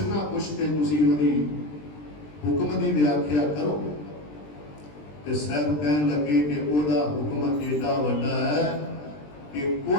ਨਾ ਕੁਛ ਤੇ ਤੁਸੀਂ ਉਹਦੀ ਹੁਕਮ ਦੀ ਵਿਆਖਿਆ ਕਰੋ। ਤੇ ਸਾਹਿਬ ਕਹਿਣ ਲੱਗੇ ਕਿ ਉਹਦਾ ਹੁਕਮ ਏਡਾ ਵੱਡਾ ਹੈ ਕਿ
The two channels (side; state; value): right; late; 20 ms